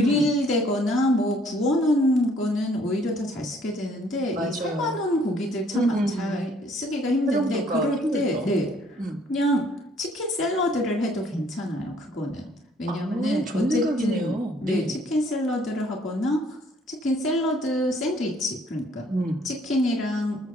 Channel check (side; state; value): both; normal; correlation 0.61